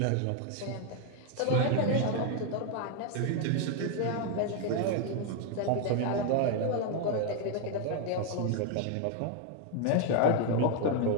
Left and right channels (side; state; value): both; different; correlation 0.00